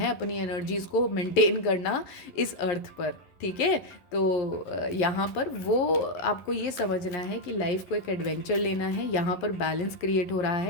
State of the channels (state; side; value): late; right; 11 ms